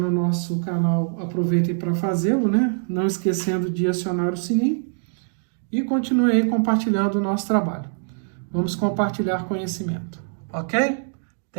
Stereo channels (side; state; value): left; silent; digital silence